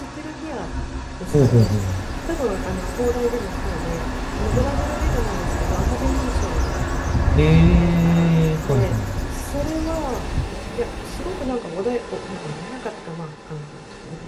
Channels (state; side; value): identical; both; correlation 1.00